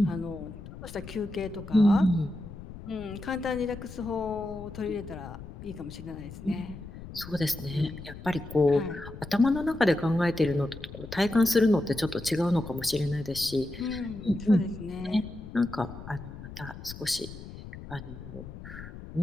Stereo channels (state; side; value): noise; left; rumble, 13 dB below the sound